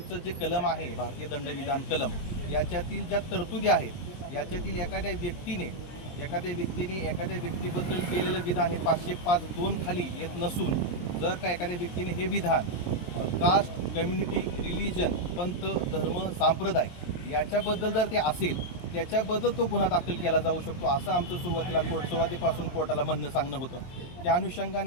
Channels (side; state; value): right; late; 23 ms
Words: जे कलम आहे भारतीय दंडविधान कलम याच्यातील ज्या तरतुदी आहेत याच्यातील एखाद्या व्यक्तीने एखाद्या व्यक्तीबद्दल केलेलं विधान हे 505(2) खाली येत नसून जर का एखाद्या व्यक्तीने हे विधान कास्ट, कम्युनिटी, रिलिजन, पंथ, धर्म, संप्रदाय याच्याबद्दल जर ते असेल त्याच्याबद्दल तो गुन्हा दाखल केला जाऊ शकतो असं आमचं सुरुवातीपासून कोर्टाला म्हणणं सांगणं होतं. त्या